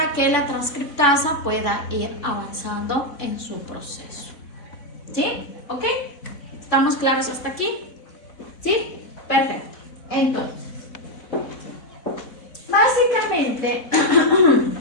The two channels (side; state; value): right; late; 4.1 ms